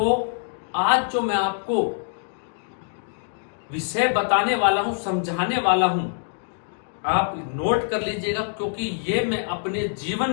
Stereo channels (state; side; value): silent; right; digital silence